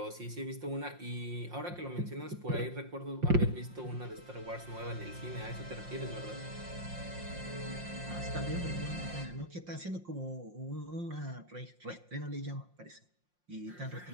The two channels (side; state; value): left; late; 5.7 ms